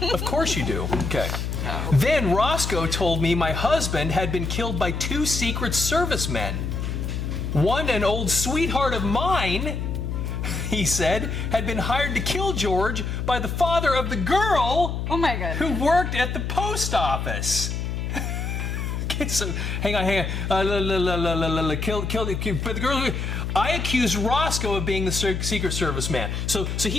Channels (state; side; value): noise; left; hum, 3 dB below the sound